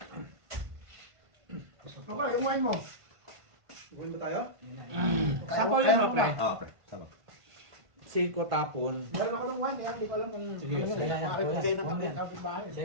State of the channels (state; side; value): late; left; 1.5 ms